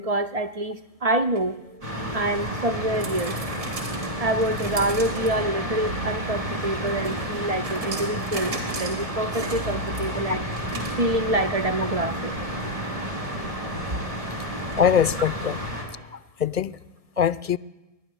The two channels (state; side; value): late; left; 1.7 ms